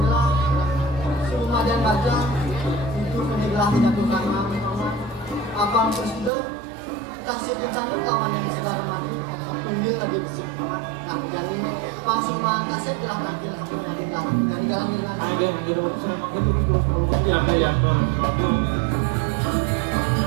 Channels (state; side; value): drops out; left; at 6.3 s